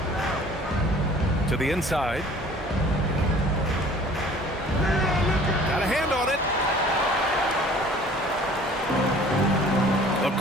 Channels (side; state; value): both; normal; correlation 0.50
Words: To the inside. Got a hand on it.